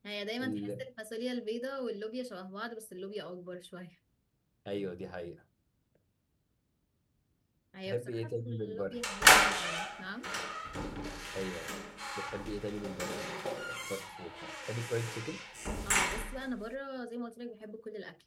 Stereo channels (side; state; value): both; identical; correlation 1.00